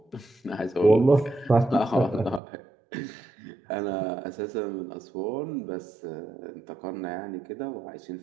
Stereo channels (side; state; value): left; drops out; at 2.4 s